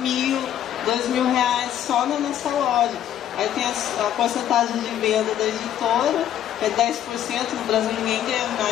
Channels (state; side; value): quieter; right; 10.9 dB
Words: R$2.000 só na nossa loja. Aí tem a porcentagem de venda da editora, que é 10%, no Brasil ninguém ganha